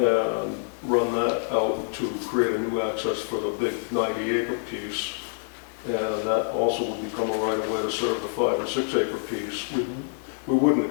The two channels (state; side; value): silent; right; digital silence